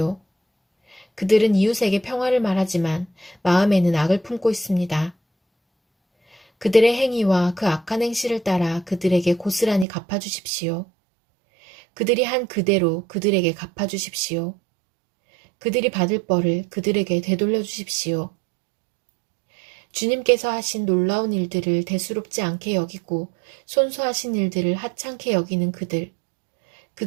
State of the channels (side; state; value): left; drops out; at 9.9 s